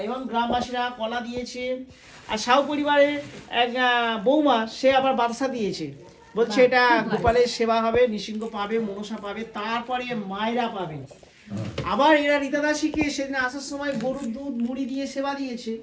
এবং গ্রামবাসীরা কলা দিয়েছে। আর সাহু পরিবারের এক বৌমা সে আবার বাদশা দিয়েছে, বলছে এটা গোপালের সেবা হবে, নৃসিংহ পাবে, মনসা পাবে, তারপরে মায়েরা পাবে। আবার এরা রীতাদাসীকে সেদিন আসার সময় গরুর দুধ মুড়ি দিয়ে সেবা দিয়েছে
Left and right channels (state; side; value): identical; both; correlation 1.00